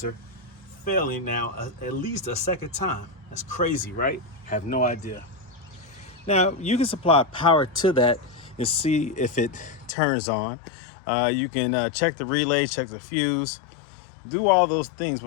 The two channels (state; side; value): drops out; right; at 10.0 s